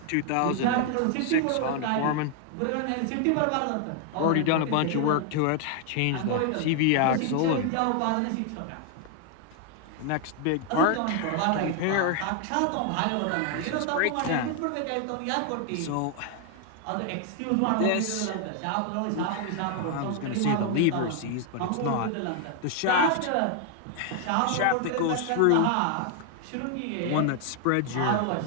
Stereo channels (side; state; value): both; different; correlation 0.00